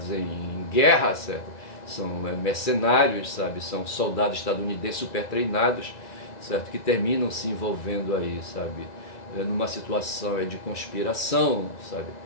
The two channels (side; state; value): right; late; 1.9 ms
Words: em guerra, certo? São mercenários, sabe? São soldados estadunidenses super treinados, certo? Que terminam se envolvendo aí, sabe? Numa situação de conspiração, sabe?